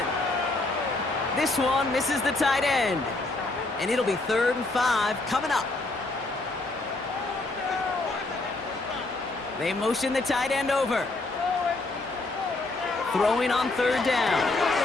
This one misses the tight end, and it'll be 3rd and 5 coming up. They motion the tight end over. Throwing on 3rd down.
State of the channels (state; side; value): quieter; right; 3.1 dB